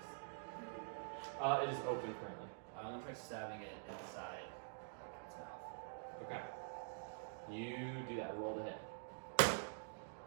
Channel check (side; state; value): left; silent; digital silence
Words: It is open currently. I'm gonna try stabbing it inside its mouth. Okay. You do that. Roll the hit.